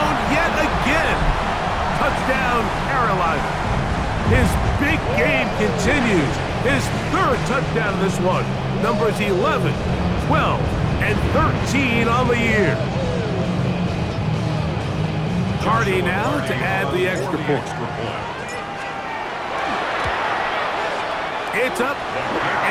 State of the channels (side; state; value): both; identical; correlation 1.00